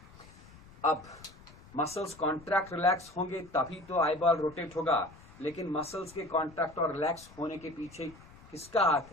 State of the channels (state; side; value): noise; left; rumble, 22 dB below the sound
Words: अब मसल्स कॉन्ट्रैक्ट रिलैक्स होंगे तभी तो आई बॉल रोटेट होगा. लेकिन मसल्स के कॉन्ट्रैक्ट और रिलैक्स होने के पीछे किसका हाथ